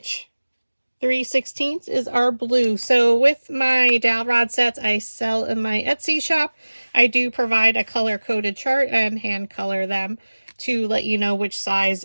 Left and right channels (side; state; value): both; inverted; correlation -1.00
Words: 3/16 is our blue. So with my dowel rod sets I sell in my Etsy shop, I do provide a color-coded chart and hand color them to let you know which size